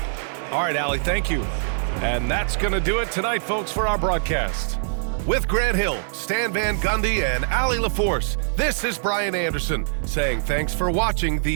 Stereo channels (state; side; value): silent; left; digital silence